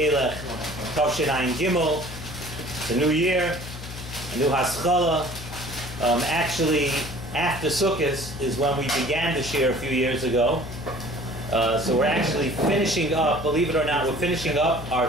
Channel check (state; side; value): noise; left; hum, 11 dB below the sound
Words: Tavshin Ayin Gimel. It's a new year, a new Haskalah. Actually, after Sukkot is when we began the Shiur a few years ago. So we're actually finishing up, believe it or not, we're finishing up our